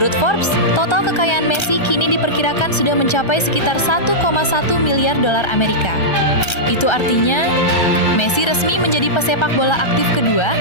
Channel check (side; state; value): right; late; 1.3 ms